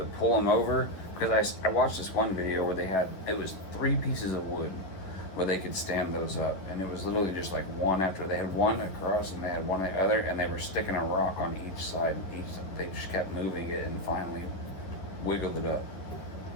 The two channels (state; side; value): late; right; 11 ms